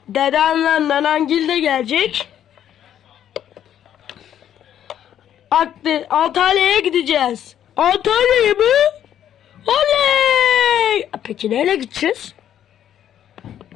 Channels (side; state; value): right; quieter; 10.4 dB